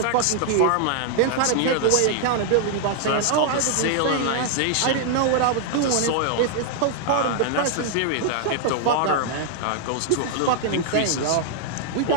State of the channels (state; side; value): different; both; correlation 0.00